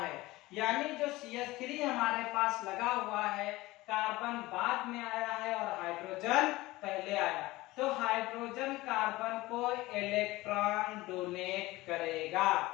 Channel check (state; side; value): quieter; right; 19.3 dB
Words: यानी जो CH3 हमारे पास लगा हुआ है, कार्बन बाद में आया है और हाइड्रोजन पहले आया, तो हाइड्रोजन कार्बन को इलेक्ट्रॉन डोनेट करेगा।